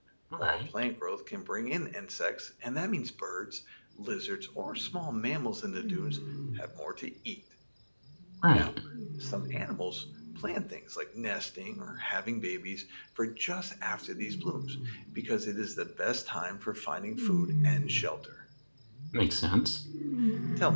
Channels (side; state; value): both; inverted; correlation -1.00